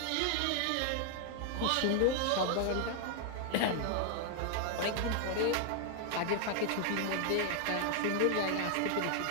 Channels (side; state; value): both; different; correlation 0.00